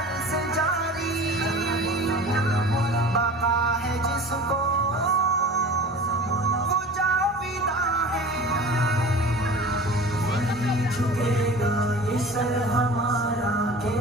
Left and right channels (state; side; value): normal; both; correlation 0.39